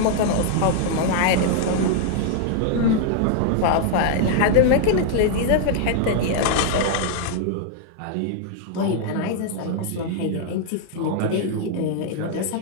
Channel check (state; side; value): different; both; correlation 0.00